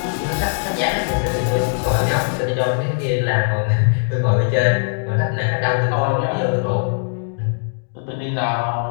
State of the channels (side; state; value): right; silent; 66 dB below the other